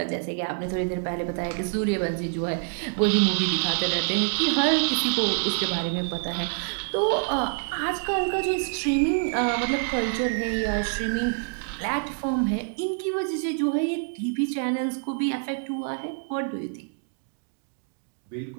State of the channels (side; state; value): left; silent; 60 dB below the other